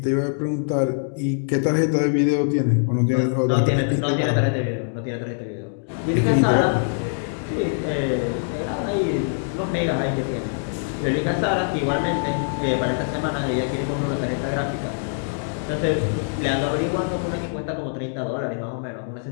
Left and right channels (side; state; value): right; silent; digital silence